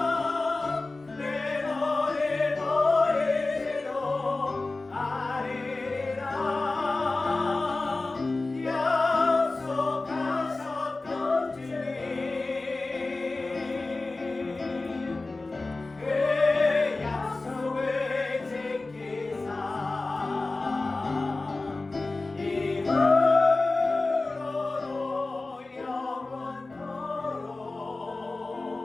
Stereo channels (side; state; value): right; quieter; 3.3 dB